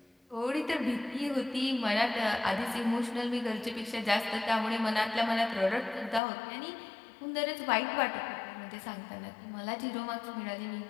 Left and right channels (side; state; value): right; drops out; at 6.2 s